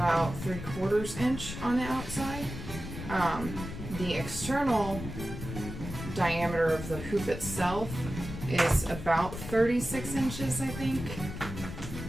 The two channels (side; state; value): left; noise; rumble, 9 dB below the sound